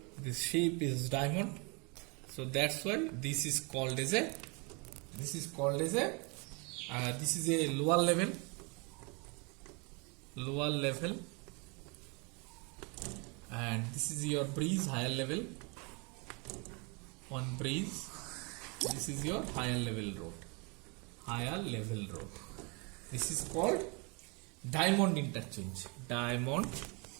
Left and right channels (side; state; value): left; quieter; 31.5 dB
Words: This shape is diamond, so that's why this is called as a this is a lower level, and this is your breeze, higher level, one breeze, This is your higher level road. Higher level road. This is called diamond interchange. Diamond